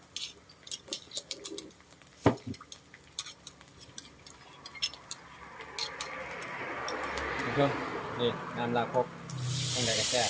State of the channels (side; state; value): both; identical; correlation 1.00